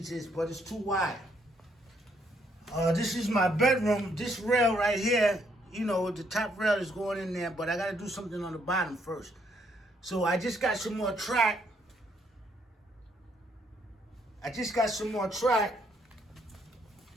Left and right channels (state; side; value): normal; both; correlation 0.71